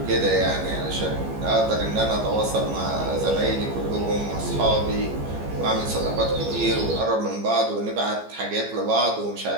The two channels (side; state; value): left; late; 15 ms